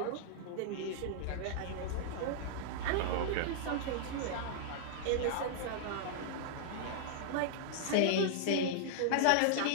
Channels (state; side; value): different; both; correlation -0.01